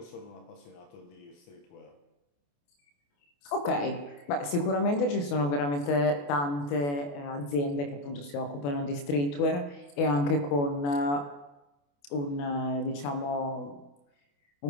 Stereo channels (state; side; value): late; right; 28 ms